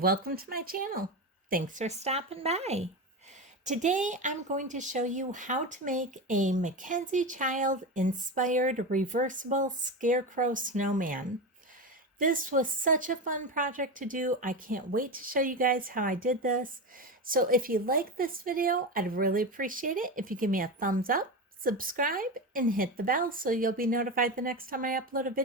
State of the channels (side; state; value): both; normal; correlation 0.20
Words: to my channel. Thanks for stopping by. Today I'm going to show you how to make a MacKenzie child inspired reversible scarecrow snowman. This was such a fun project to do. I can't wait to show you guys how I did this. So if you like this video, I'd really appreciate it if you give me a thumbs up, subscribe, and hit the bell so you'll be notified the next time I upload a